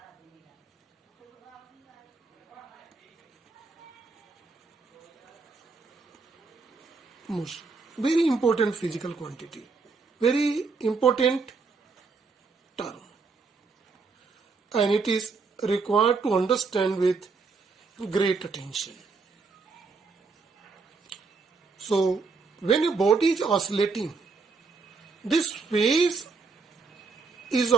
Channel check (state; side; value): quieter; left; 4.4 dB